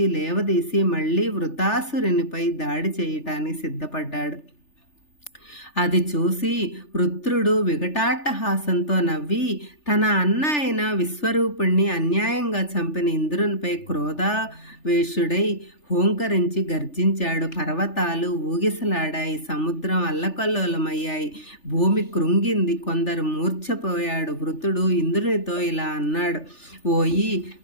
లేవదీసి మళ్ళీ వృతాసురునిపై దాడి చేయటానికి సిద్ధపడ్డాడు. అది చూసి వృత్రుడు వికటాట్టహాసంతో నవ్వి తన అన్న అయిన విశ్వరూపుణ్ణి అన్యాయంగా చంపిన ఇంద్రునిపై క్రోధావేశుడై హోంకరించి గర్జించాడు. పర్వతాలు ఊగిసలాడాయి. సముద్రం అల్లకల్లోలమయ్యాయి. భూమి కృంగింది. కొందరు మూర్ఛపోయాడు. వృతుడు ఇంద్రునితో ఇలా అన్నాడు: ఓయి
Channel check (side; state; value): right; late; 3.4 ms